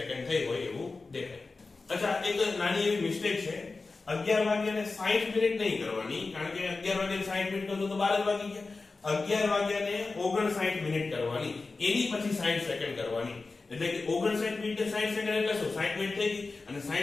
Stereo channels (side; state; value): right; quieter; 3.8 dB